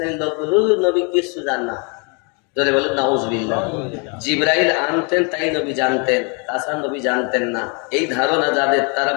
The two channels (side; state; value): right; quieter; 33.8 dB